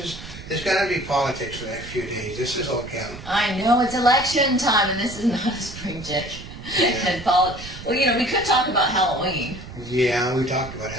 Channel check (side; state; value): right; noise; rumble, 13 dB below the sound